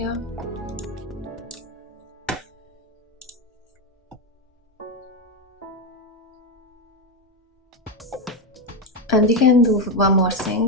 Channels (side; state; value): both; normal; correlation 0.10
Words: And we can do one more